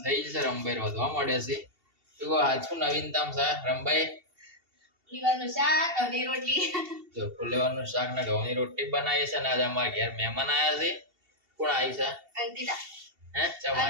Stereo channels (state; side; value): late; left; 2.7 ms